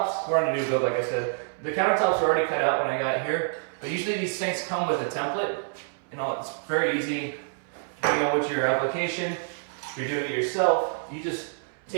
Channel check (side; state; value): left; silent; 60 dB below the other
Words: we're on a new build, like I said. The countertops are already cut out when I got here, but usually these sinks come with a template. You know, it's very easy, depending on what your application. If you're doing it yourself, you just